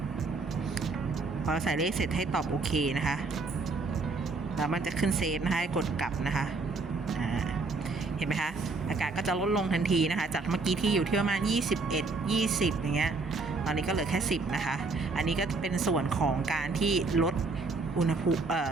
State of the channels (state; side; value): quieter; left; 3.8 dB